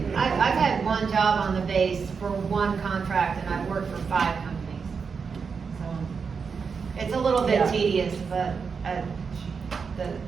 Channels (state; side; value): quieter; left; 5.6 dB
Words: I've had one job on the base for one contract, and I've worked for 5 companies. So, it's a little bit Yeah. tedious, but,